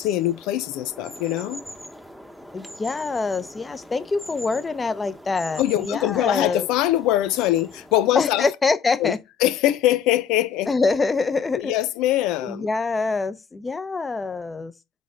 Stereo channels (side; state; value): right; quieter; 7.5 dB